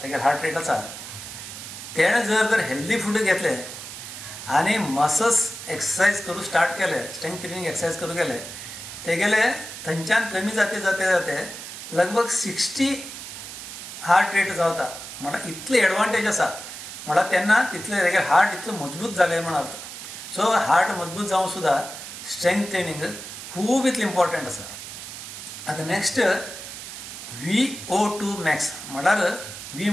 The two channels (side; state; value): right; noise; hiss, 10 dB below the sound